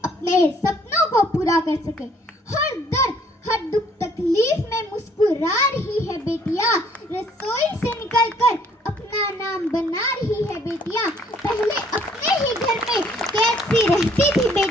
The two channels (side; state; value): both; normal; correlation 0.61